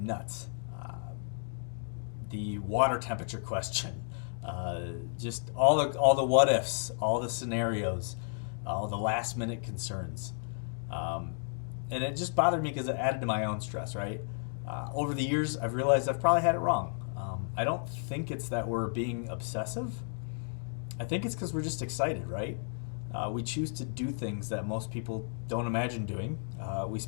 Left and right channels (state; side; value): silent; right; digital silence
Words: The water temperature question, just all the what ifs, all the scenarios, all the last minute concerns. And it just bothered me because it added to my own stress, right? Over the years, I've realized I've probably had it wrong. I don't think it's that we're being obsessive. I think it's because we're just excited, right? We choose to do things that most people don't imagine doing. We